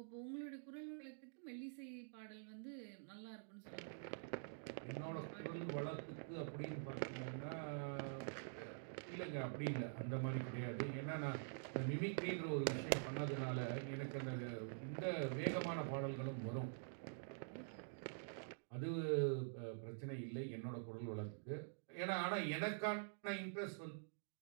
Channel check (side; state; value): left; silent; digital silence